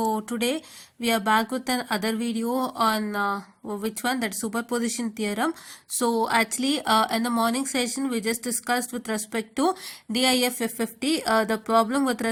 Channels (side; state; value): both; identical; correlation 1.00